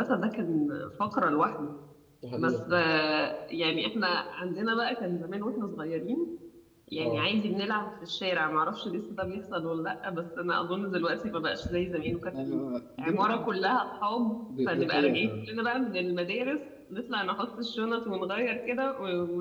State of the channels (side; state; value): both; identical; correlation 1.00